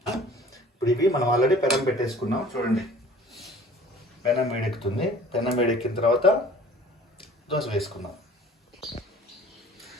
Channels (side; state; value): both; normal; correlation 0.49